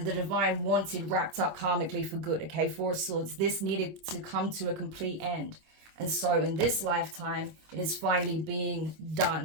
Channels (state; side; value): late; left; 25 ms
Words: the divine wanted wrapped up karmically for good, okay? Four of Swords. This needed to come to a complete end. And so in this lifetime, it is finally being